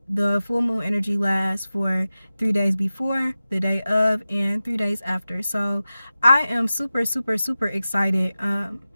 the full moon energy lasts for 3 days before, the day of, and 3 days after. So I am super excited.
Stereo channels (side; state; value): both; inverted; correlation -0.95